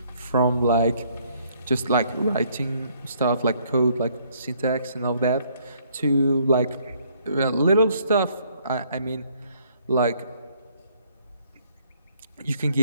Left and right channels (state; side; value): inverted; both; correlation -0.65